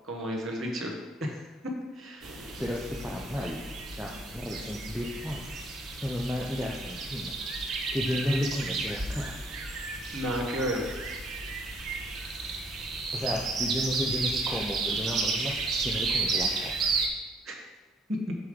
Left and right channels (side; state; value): both; normal; correlation 0.64